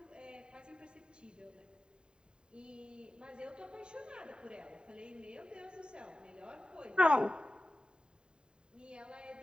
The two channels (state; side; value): late; left; 0.049 ms